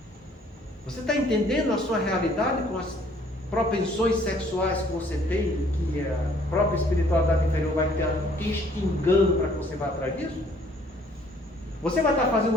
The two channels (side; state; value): both; normal; correlation 0.60